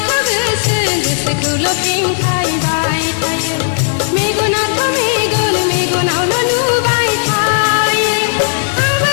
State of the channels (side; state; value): right; silent; digital silence